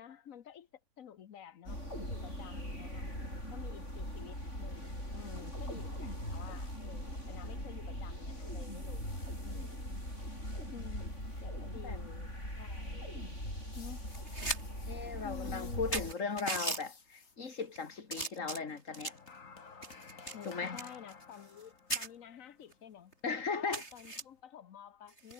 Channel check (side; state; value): right; late; 3.3 ms